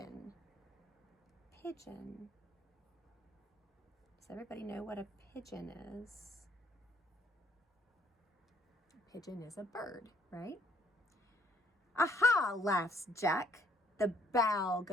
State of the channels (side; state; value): both; normal; correlation 0.65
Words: Pigeon. Does everybody know what a pigeon is? A pigeon is a bird, right? Aha, laughs Jack. The bough